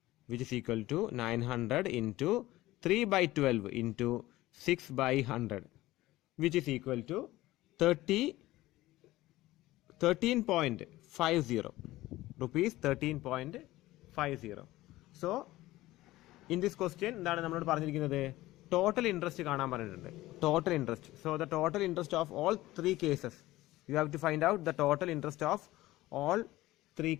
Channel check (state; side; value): quieter; right; 17.3 dB